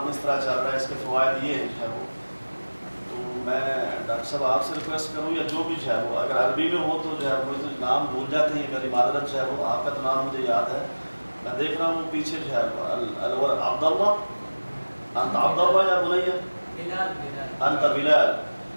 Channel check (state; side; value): inverted; both; correlation -1.00